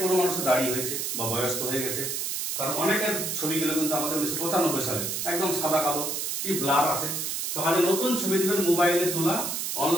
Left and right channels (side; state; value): right; noise; hiss, 2 dB below the sound